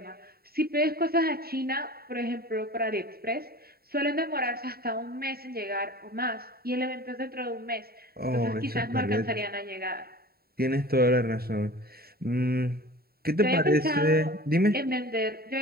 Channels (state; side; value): late; left; 0.45 ms